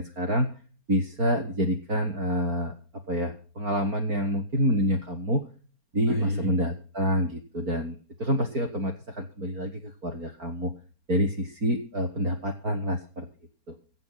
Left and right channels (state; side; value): late; left; 4.3 ms